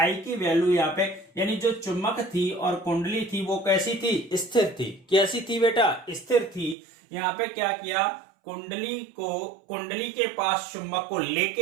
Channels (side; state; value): left; drops out; at 6.8 s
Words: की वैल्यू यहाँ पे, यानी जो चुंबक थी और कुंडली थी वो कैसी थी, स्थिर थी। कैसी थी बेटा, स्थिर थी। यहाँ पे क्या किया, कुंडली के पास चुंबक को